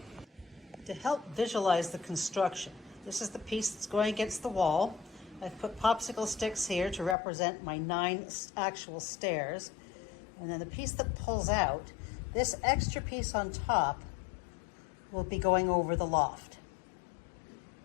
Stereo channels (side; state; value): right; drops out; at 7.2 s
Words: To help visualize the construction, this is the piece that's going against the wall. I've put popsicle sticks here to represent my 9 actual stairs, and then the piece that pulls out, this extra piece on top will be going over the loft.